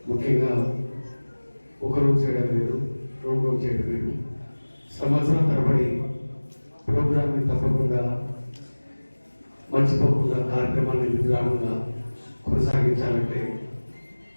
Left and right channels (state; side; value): inverted; both; correlation -1.00